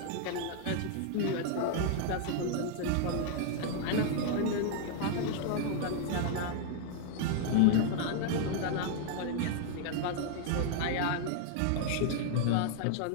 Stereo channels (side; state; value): both; different; correlation 0.00